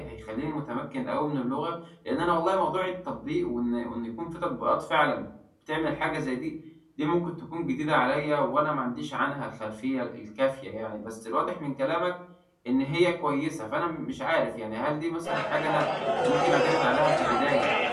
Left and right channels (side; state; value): both; identical; correlation 1.00